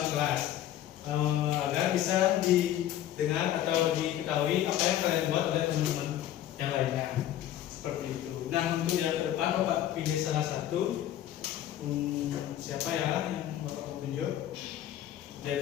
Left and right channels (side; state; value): right; quieter; 12.1 dB